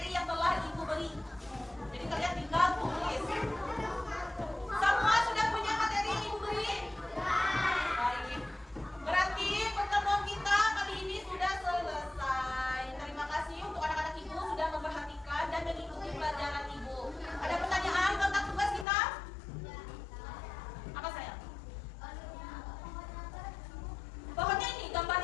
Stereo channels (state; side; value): drops out; right; at 18.9 s